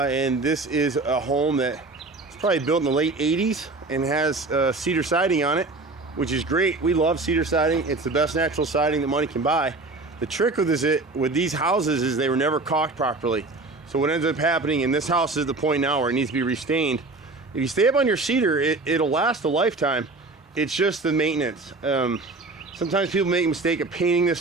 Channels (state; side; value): quieter; left; 3.4 dB